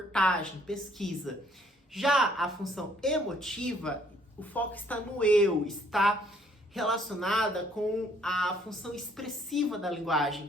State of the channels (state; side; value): normal; both; correlation 0.64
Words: pesquisa. Já a função emotiva, o foco está no eu, está relacionada com a função expressiva da